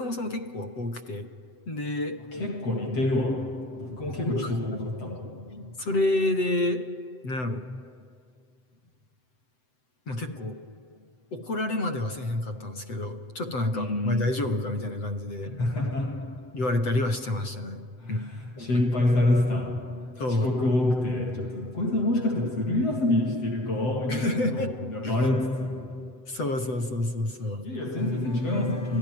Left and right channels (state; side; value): late; right; 7.9 ms